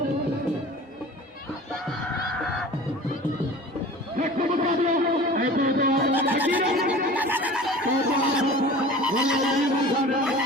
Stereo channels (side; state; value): both; normal; correlation 0.40